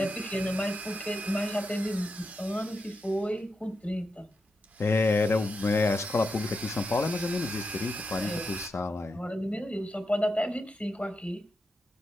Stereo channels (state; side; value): normal; both; correlation 0.86